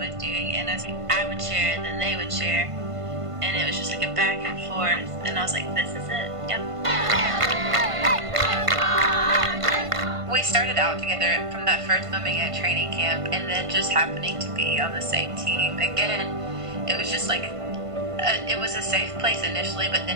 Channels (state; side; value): late; left; 1.5 ms